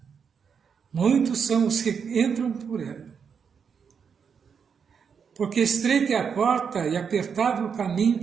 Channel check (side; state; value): left; quieter; 6.6 dB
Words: Muitos são os que entram por ela. Porque estreita é a porta e apertado o caminho